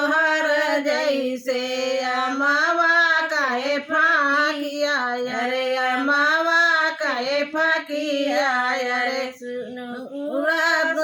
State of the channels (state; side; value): identical; both; correlation 1.00